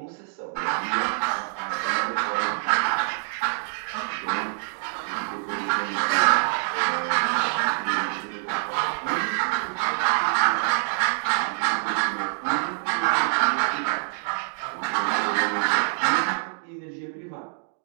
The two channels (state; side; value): silent; left; digital silence